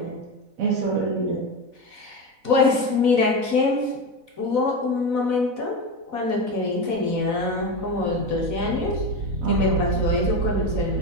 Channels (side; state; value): left; late; 4.0 ms